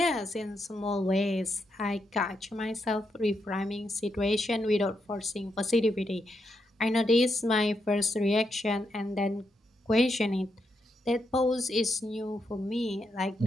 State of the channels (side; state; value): both; normal; correlation 0.82